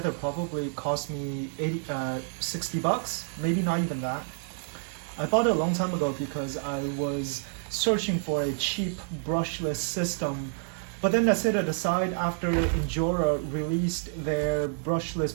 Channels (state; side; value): silent; left; 59 dB below the other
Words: probably cost me 60 bucks, maybe not even that. I bought it a long time ago because I was searching for a cheap brushless system, but then I set it aside after Injora released their brushless